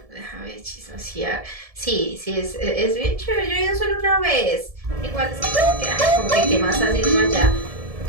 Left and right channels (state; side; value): late; left; 1.7 ms